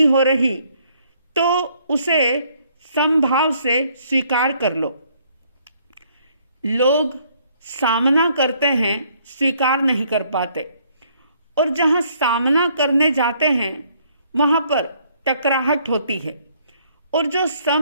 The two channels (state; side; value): inverted; both; correlation -0.66